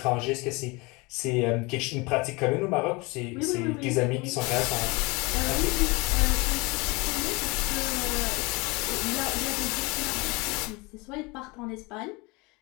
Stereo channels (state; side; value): quieter; right; 25.9 dB